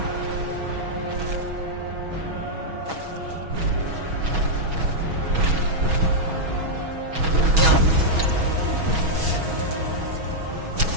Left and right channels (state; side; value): late; left; 6.2 ms